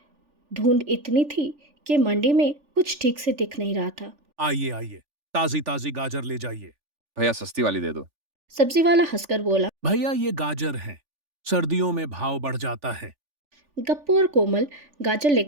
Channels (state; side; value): late; left; 3.4 ms